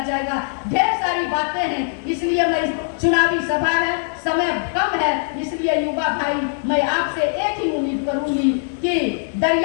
जाएगा। ढेर सारी बातें हैं, इसलिए मैं चुनावी सभा है, समय कम है, इसलिए युवा भाई मैं आपसे एक ही उम्मीद करूंगी कि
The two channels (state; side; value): silent; right; 65 dB below the other